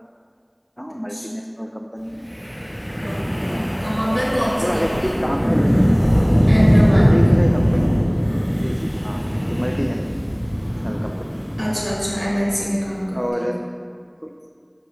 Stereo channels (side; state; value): both; identical; correlation 1.00